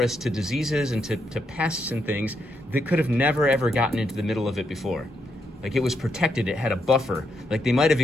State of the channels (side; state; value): both; normal; correlation 0.79